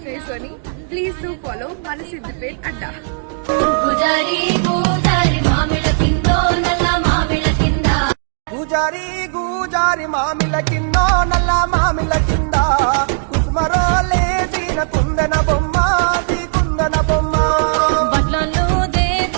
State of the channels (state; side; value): silent; left; digital silence